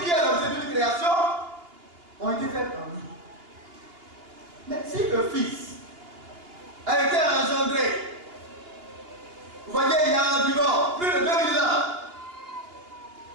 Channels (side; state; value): left; late; 2.8 ms